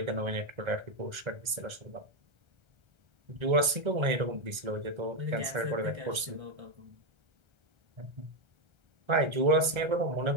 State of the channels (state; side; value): late; left; 1.3 ms